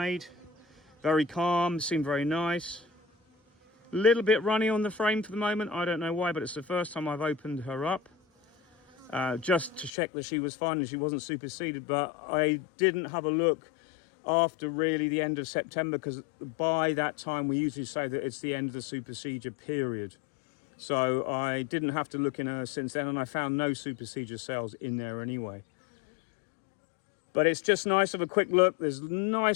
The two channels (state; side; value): drops out; right; at 9.9 s